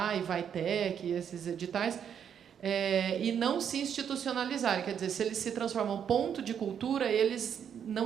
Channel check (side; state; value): left; quieter; 8.3 dB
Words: esses editais, e não se institucionalizarem. Quer dizer, se eles se transformam em ponto de cultura, eles